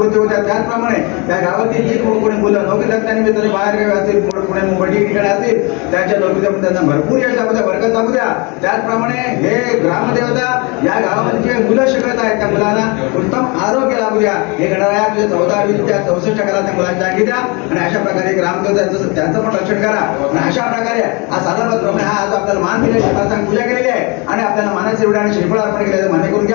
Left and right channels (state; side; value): quieter; right; 28.9 dB